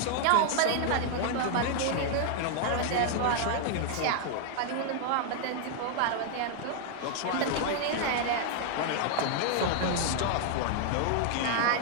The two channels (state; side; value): different; both; correlation 0.00